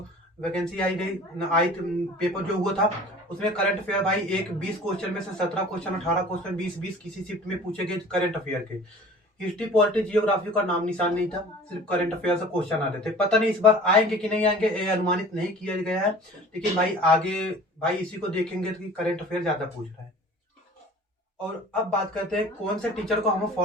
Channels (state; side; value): normal; both; correlation 0.44